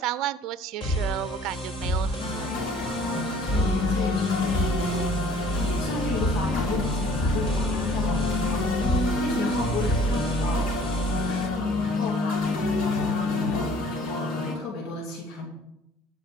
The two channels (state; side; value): normal; both; correlation 0.53